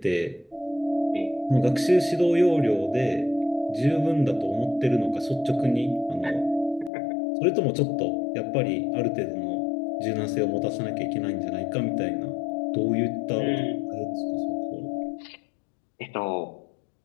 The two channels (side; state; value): right; drops out; at 6.9 s